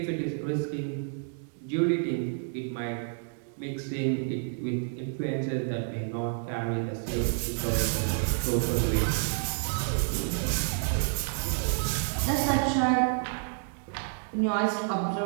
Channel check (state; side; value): silent; left; digital silence